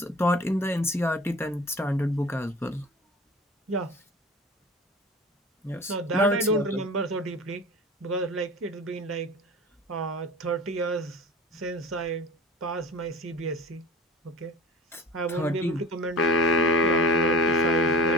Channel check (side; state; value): both; normal; correlation 0.38